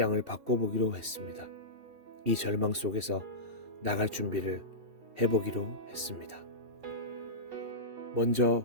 바꿔보기로 했습니다. 이 절망 속에서 나갈 준비를 해보기로 했습니다.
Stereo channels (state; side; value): late; left; 2.7 ms